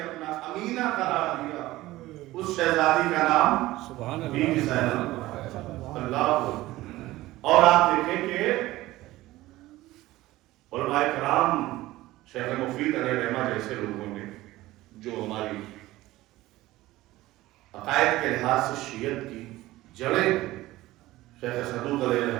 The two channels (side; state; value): left; quieter; 17.3 dB